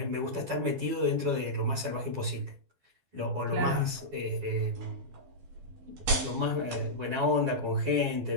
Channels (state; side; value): late; left; 12 ms